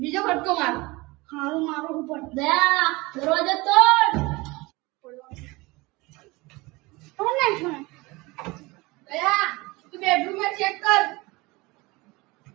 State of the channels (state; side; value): quieter; left; 23.1 dB